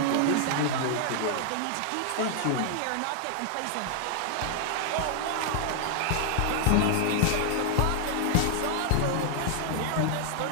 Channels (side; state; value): both; different; correlation 0.00